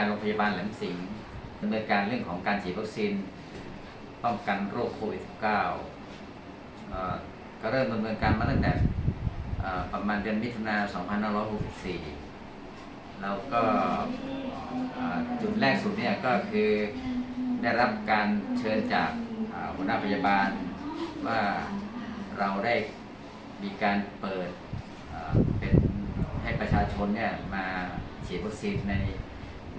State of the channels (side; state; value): both; identical; correlation 1.00